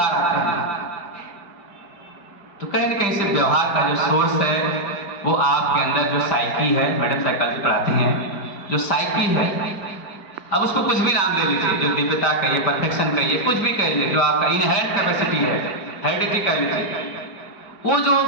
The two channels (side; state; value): right; late; 5.1 ms